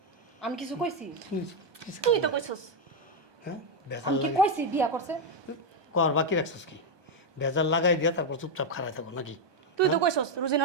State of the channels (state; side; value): late; left; 1.2 ms